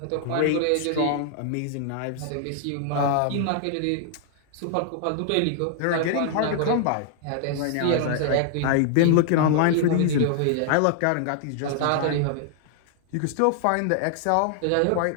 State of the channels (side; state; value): both; different; correlation -0.01